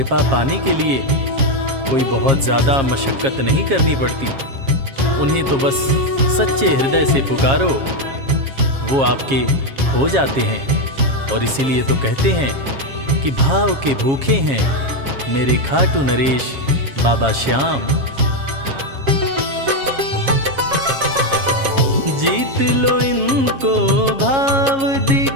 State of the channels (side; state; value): left; late; 7.4 ms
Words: पाने के लिए कोई बहुत ज़्यादा मशक्क़त नहीं करनी पड़ती। उन्हें तो बस सच्चे हृदय से पुकारो, वो आपके हो जाते हैं। और इसीलिए तो कहते हैं कि भाव के भूखे हैं मेरे खाटू नरेश बाबा श्याम। जीत लो इनको भाव